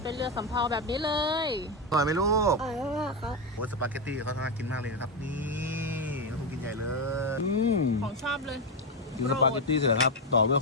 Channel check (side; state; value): both; normal; correlation 0.09